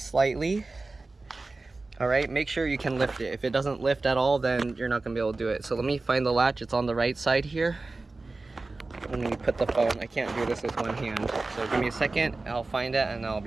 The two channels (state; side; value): quieter; left; 3.5 dB